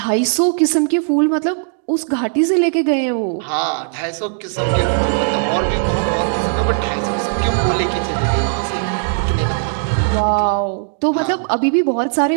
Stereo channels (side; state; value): left; silent; digital silence